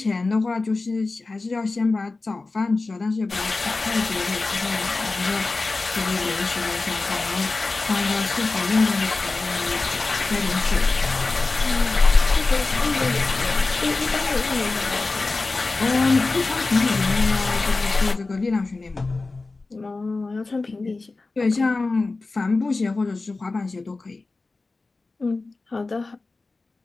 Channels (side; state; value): right; quieter; 3.5 dB